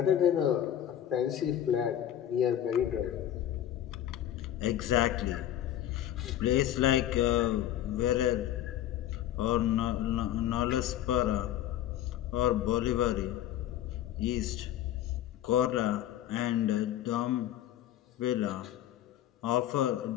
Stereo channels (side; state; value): right; quieter; 11.7 dB